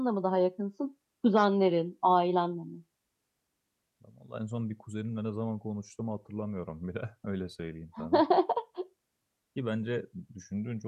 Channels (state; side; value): identical; both; correlation 1.00